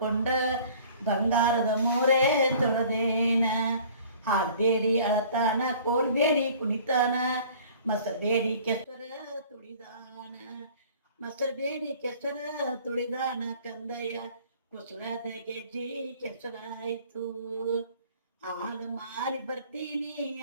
ಬಂಗಾರದ ಮೋರೆ ತೊಳೆದೇನ ಹಾಡ್ಬೇಡಿ ಅಳತಾನ ಕೋಲ್ಬೇಡಿ ಕುಣಿತಾನ ಮಸಬೇಡಿ ಕೆಸರ ತುಳಿದಾನ ಮಸಬೇಡಿ ಕೆಸರ ತುಳಿದಾನ ಕಂದಯ್ಯ ಕುಸಳದ ಗೆಜ್ಜಿ ಕೆಸರಾಯ್ತು ಹಾಲು ಮಾರಿ ಬರ್ತೀನಿ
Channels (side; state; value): both; inverted; correlation -0.50